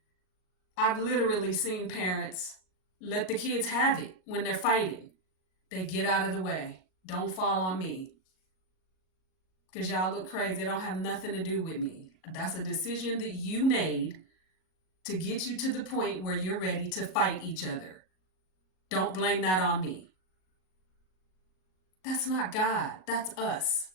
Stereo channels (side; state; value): right; late; 38 ms